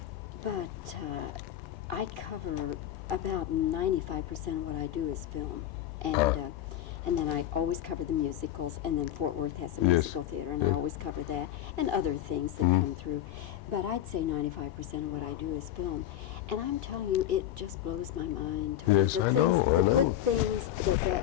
But I cover about 95% of what I do is film. And then I always cover the musicals, and then Fort Worth has a Yes. musical theater, and I always cover that, and other things that come through. But I'd say 95% of what I do is film. And I'm telling you, it just blows my mind. Tony. Yes, the I things, know, I the know. good things that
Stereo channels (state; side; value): quieter; right; 11.9 dB